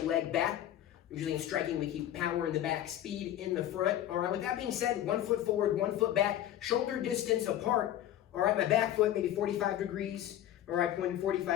leg back. Usually in striking, we keep power in the back, speed in the front. All right, with that being said, 1 foot forward, 1 foot back, shoulder distance apart. All right, my back foot maybe 45 degrees. All right, pointing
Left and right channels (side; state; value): right; quieter; 12.0 dB